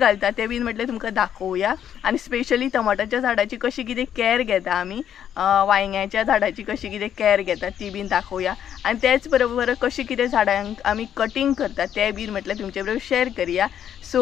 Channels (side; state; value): right; quieter; 9.6 dB